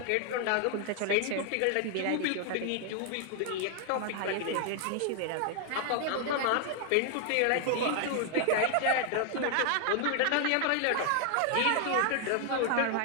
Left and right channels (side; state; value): both; different; correlation 0.00